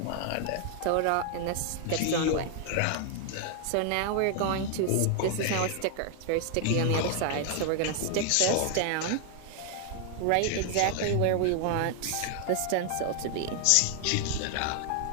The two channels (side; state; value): both; different; correlation 0.00